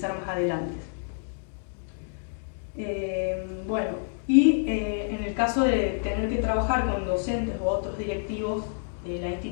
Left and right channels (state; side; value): silent; right; digital silence